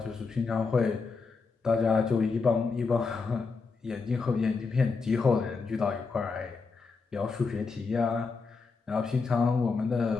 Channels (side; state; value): right; quieter; 4.6 dB